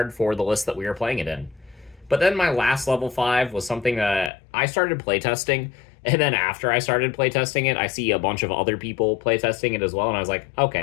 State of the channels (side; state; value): right; drops out; at 4.3 s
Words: for the list that we are playing it in. But then my last level 5 was something that I started playtesting, and then after I started playtesting it, I see a bunch of other people playtesting it as well, and I was like,